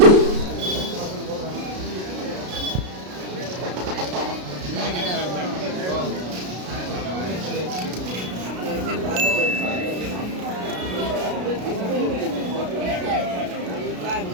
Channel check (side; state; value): left; late; 33 ms